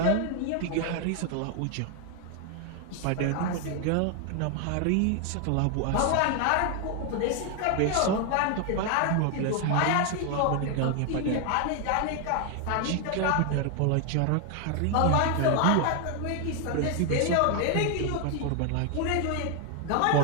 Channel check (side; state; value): both; different; correlation 0.01